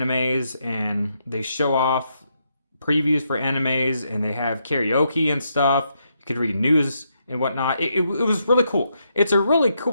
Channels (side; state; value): both; inverted; correlation -0.79